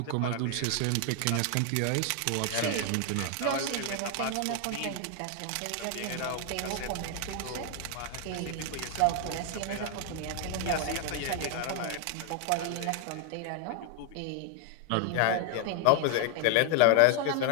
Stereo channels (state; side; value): different; both; correlation 0.00